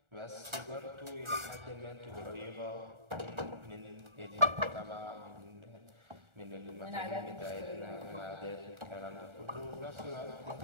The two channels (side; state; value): left; late; 1.4 ms